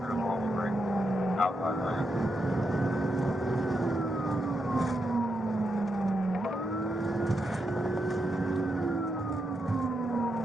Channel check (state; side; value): normal; both; correlation 0.83